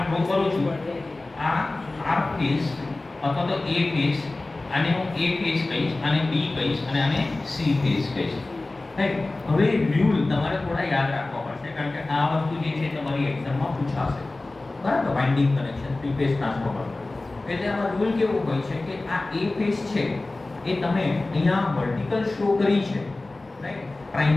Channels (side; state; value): right; quieter; 3.0 dB